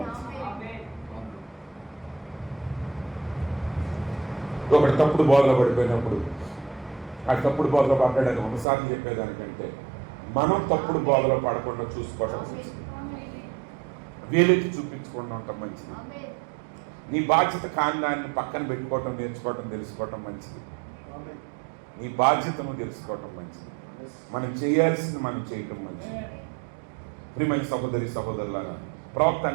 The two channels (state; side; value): drops out; left; at 8.7 s